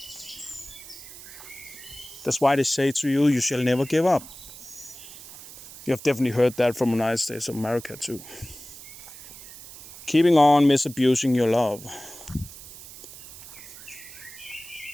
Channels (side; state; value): right; noise; hiss, 16 dB below the sound